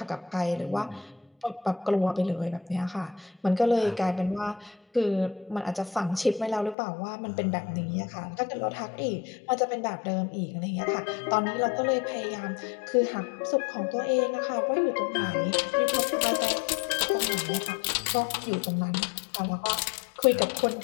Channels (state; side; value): drops out; right; at 6.8 s